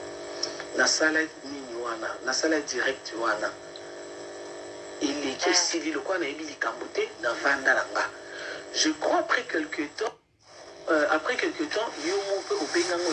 nasala nini wana nasala direct wana eleki esili lokola nayebi likambo te na vanda na nga je crois après quelque temps yo mpe obenganga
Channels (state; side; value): identical; both; correlation 1.00